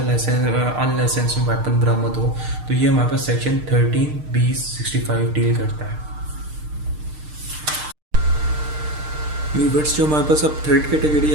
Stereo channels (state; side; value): late; left; 6.6 ms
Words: वेपन बरामद हो, तो ये हमारे पास सेक्शन 13, 20, 65 डील करता है। व्यूवर्स, जो हमारे पास अब थर्ड कैटेगरी